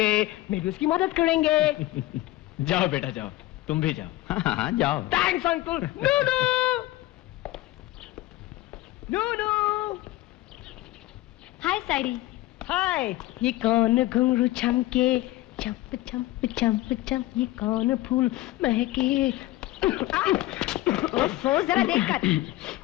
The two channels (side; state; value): right; quieter; 17.2 dB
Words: मैं भी उसकी मदद करेंगे। जाओ बेटा जाओ, तुम भी जाओ। हाँ जाओ। Thanks uncle. नूनू नूनू। हाय साइडी। हाय। ये कौन घुंघरू छमके, चंप चंप चंप चंप, ये कौन फूल महके। ओफो, जरा देखकर।